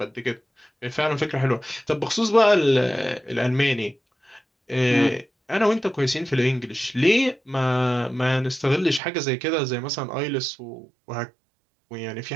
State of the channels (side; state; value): left; drops out; at 9.0 s